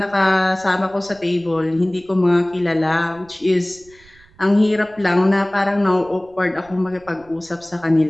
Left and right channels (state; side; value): noise; right; rumble, 28 dB below the sound